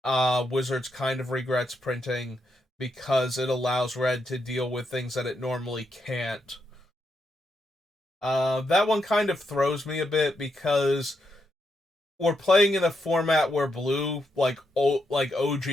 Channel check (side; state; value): both; normal; correlation 0.82